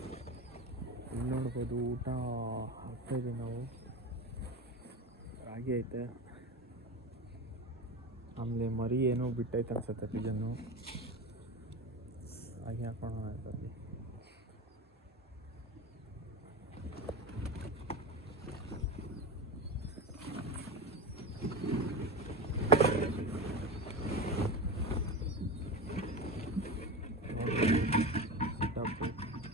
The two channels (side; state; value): both; normal; correlation 0.25